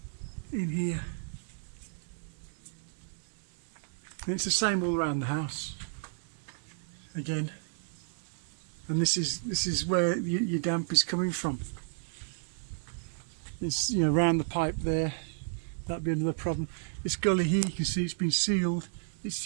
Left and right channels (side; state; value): left; silent; digital silence